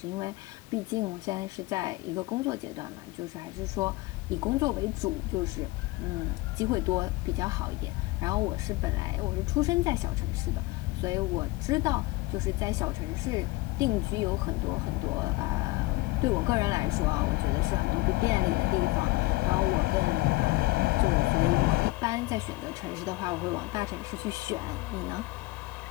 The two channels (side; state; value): right; quieter; 20.9 dB